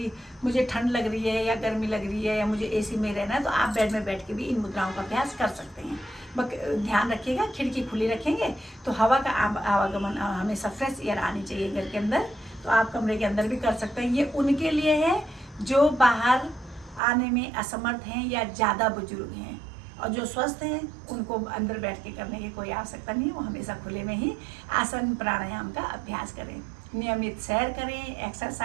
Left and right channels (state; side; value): drops out; left; at 17.0 s